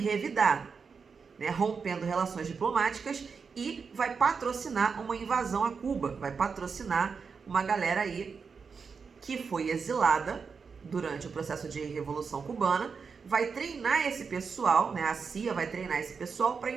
né, rompendo relações diplomáticas e vai patrocinar uma invasão a Cuba, vai patrocinar uma galera aí que foi exilada durante o processo de Revolução Cubana, vai treinar esse pessoal, né, a CIA vai treinar esse pessoal para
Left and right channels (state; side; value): quieter; left; 5.5 dB